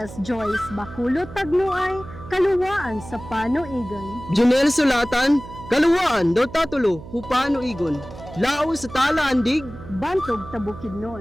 Joyce Bakulot Tagnuay, kaluwaan sa Panoigon. Junel Sulatan, kaluwaan daw tatulo, hupano igon. Lao sa talaandig, Bantog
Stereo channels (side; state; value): right; noise; hum, 15 dB below the sound